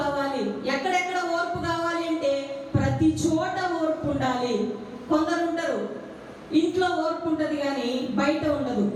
ఎక్కడెక్కడ ఓర్పు కావాలి అంటే ప్రతి చోట ఓర్పు ఉండాలి. కొందరు ఉంటారు ఇంట్లో ఓర్పు ఉంటుంది కానీ బయట ఉండదు.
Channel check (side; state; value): both; identical; correlation 1.00